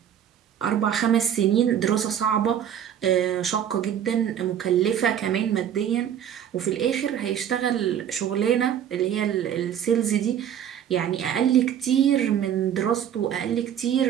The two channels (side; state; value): left; quieter; 9.6 dB